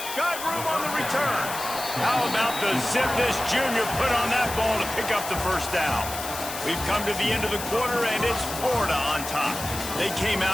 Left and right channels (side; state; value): left; noise; hiss, 8 dB below the sound